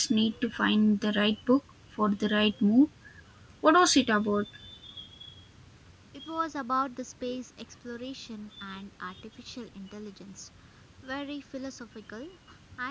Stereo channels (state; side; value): identical; both; correlation 1.00